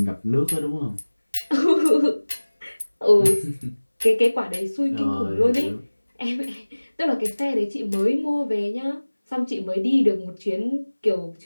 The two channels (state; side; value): inverted; both; correlation -1.00